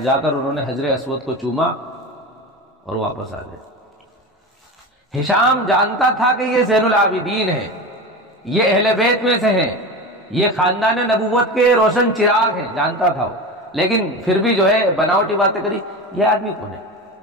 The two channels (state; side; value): normal; both; correlation 0.26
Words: کر انہوں نے حجر اسود کو چوما اور واپس آ گئے۔ ہشام جانتا تھا کہ یہ زین العابدین ہے، یہ اہل بیت میں سے ہیں، یہ خاندان نبوت کے روشن چراغ ہیں، جانتا تھا وہ، لیکن پھر بھی جو ہے بناوٹی باتیں کری۔ یہ آدمی کون ہے،